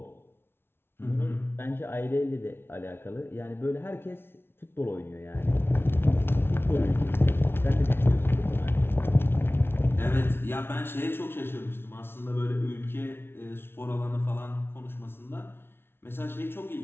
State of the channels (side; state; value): right; late; 0.11 ms